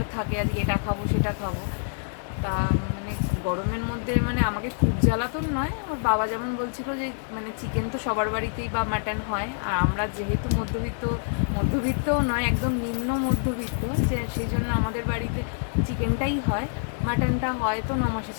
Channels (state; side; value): silent; right; digital silence